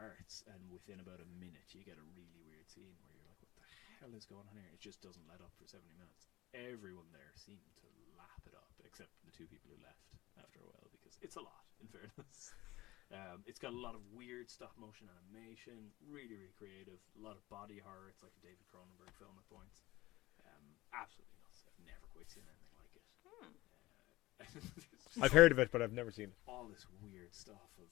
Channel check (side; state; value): right; quieter; 18.8 dB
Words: and within about a minute, you get a really weird scene where you're like, what the hell is going on here? It just doesn't let up for 70 minutes. Everyone there seemed to lap it up, except the two people who left after a while, because it's a lot, in fairness. It's got a lot of weird stop-motion animation, really, really creative, a lot of body horror. It's like a David Cronenberg film at points. Absolutely nuts. I've never quite seen anything like it. I've heard of it, but I've never seen it. All this weird stuff of,